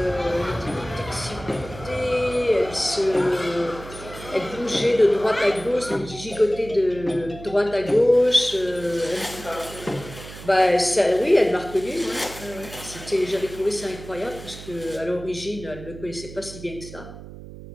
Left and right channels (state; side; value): noise; right; hum, 14 dB below the sound